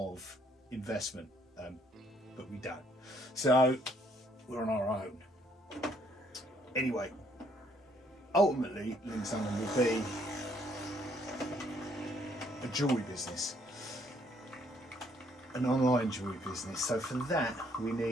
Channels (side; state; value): both; normal; correlation 0.67